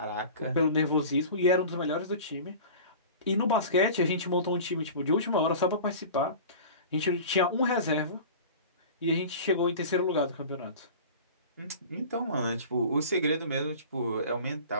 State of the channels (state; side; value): inverted; both; correlation -0.37